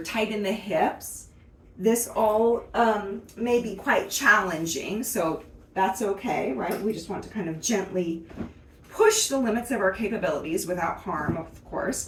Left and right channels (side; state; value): both; identical; correlation 1.00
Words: in the hips, this all may be quite challenging, so that's okay, right? We just want to kind of gently push the limits of our capabilities without harm, of